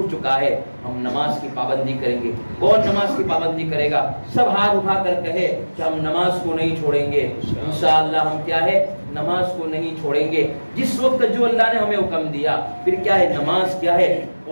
چکا ہے، ہم نماز کی پابندی کریں گے۔ کون نماز کی پابندی کرے گا؟ سب ہاتھ اٹھا کر کہے کہ ہم نماز کو نہیں چھوڑیں گے، انشاءاللہ ہم کیا ہے نماز کو نہیں چھوڑیں گے، جس وقت جو اللہ نے ہمیں حکم دیا۔ پھر کیا ہے نماز کیا ہے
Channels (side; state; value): both; inverted; correlation -1.00